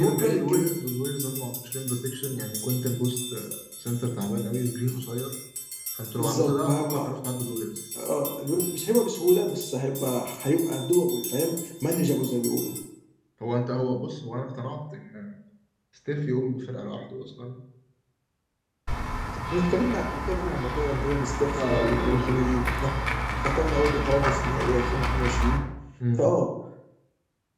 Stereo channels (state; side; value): identical; both; correlation 1.00